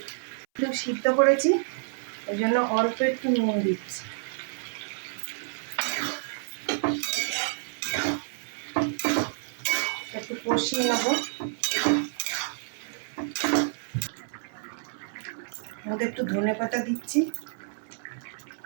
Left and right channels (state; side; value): silent; left; 59 dB below the other